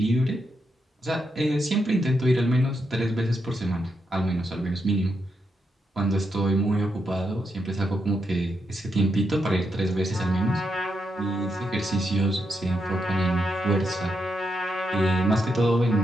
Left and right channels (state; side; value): normal; both; correlation 0.82